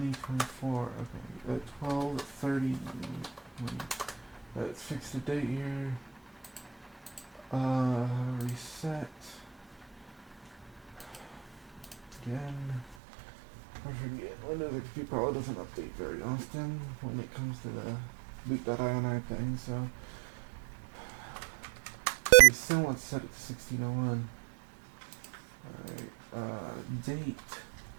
Okay, 12/30. Let's fix the date here. Reset. Again. I forget. Windows XP probably doesn't update very often when it comes to the boot.ini thing, so we still want to set it to 1601. Alright, date.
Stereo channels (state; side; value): drops out; left; at 13.0 s